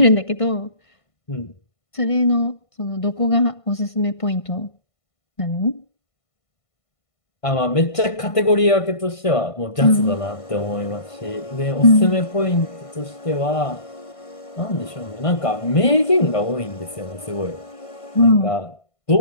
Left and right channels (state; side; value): late; right; 1.5 ms